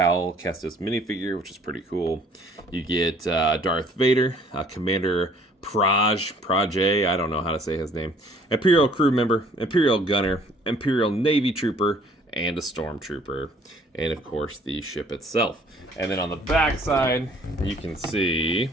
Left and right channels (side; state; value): both; normal; correlation 0.57